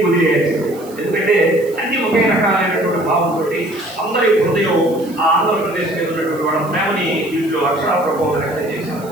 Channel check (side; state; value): right; noise; hiss, 21 dB below the sound